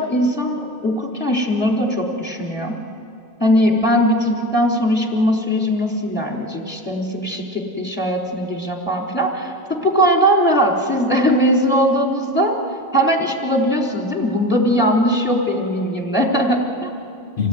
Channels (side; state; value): both; normal; correlation 0.29